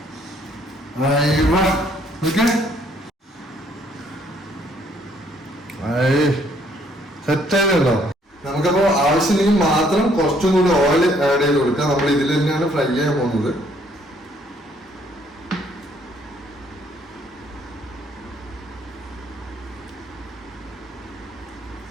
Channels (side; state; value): both; normal; correlation 0.65